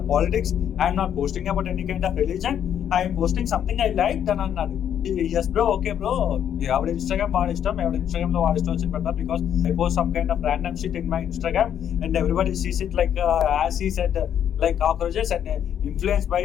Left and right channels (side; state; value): right; quieter; 9.4 dB